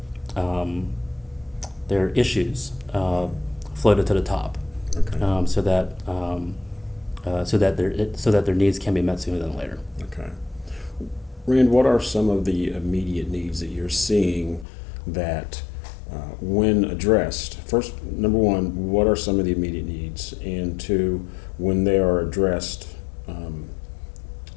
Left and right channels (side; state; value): right; drops out; at 14.7 s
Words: issues floated to the top, Okay. so that their needs can be met sooner than later. Okay. Rand, what are some of the immediate needs that you're seeing that, when addressed, first, number one, what are some of the immediate needs? And two, when they are addressed,